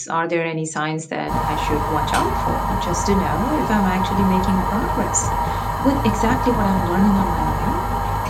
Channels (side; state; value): both; identical; correlation 1.00